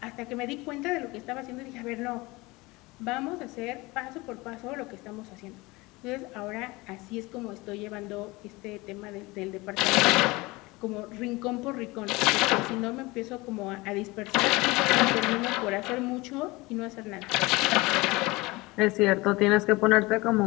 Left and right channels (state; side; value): quieter; right; 22.6 dB